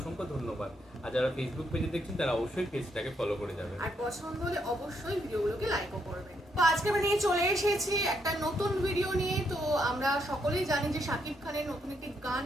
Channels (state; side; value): normal; both; correlation 0.76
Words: ধন্যবাদ। আর যারা ফেসবুক পেজে দেখছেন তারা অবশ্যই পেজটাকে ফলো করে যাবেন, আর পছন্দ হলে অবশ্যই ভিডিওগুলোকে লাইকও করবেন। তো আজকে আমরা নিয়ে চলে এসেছি একটা নতুন ভিডিও নিয়ে। তো আমরা সকলেই জানি যে শাকিব খানের নতুন একটি গান